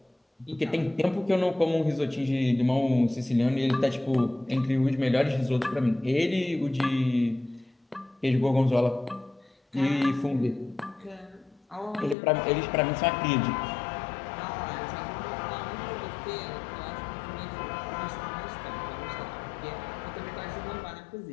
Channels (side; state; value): right; drops out; at 12.2 s